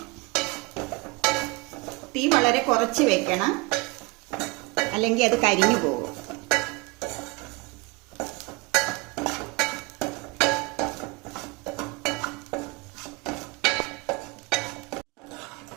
തീ വളരെ കുറച്ച് വെക്കണം, അല്ലെങ്കിൽ അത് കരിഞ്ഞു പോകും.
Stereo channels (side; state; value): left; quieter; 26.0 dB